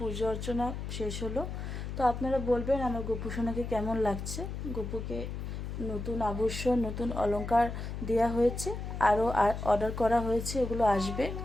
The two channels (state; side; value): noise; left; hum, 6 dB below the sound